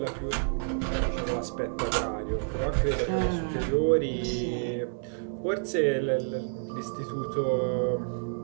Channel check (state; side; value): silent; left; digital silence